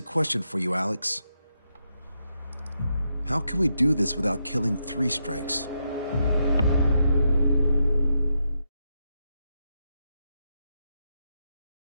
question for you, Alex. How can we do this without killing 3 strikes?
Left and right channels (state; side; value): inverted; both; correlation -0.82